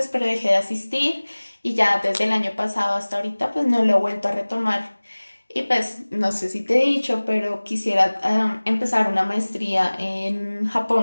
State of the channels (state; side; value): inverted; both; correlation -1.00